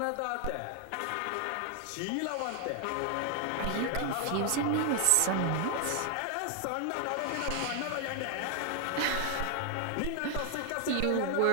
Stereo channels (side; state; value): both; different; correlation 0.00